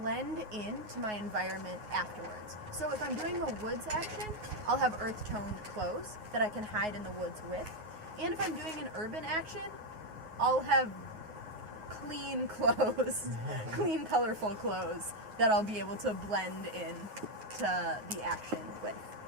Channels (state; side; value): late; left; 9.4 ms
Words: into my environment afterwards. So if I'm doing a woods action, I'll have earth toned clothes that I can hide in the woods with. And if I'm doing an urban action, I'll have clean clothes, clean, colorful clothes that I'll be able to blend in to the action with.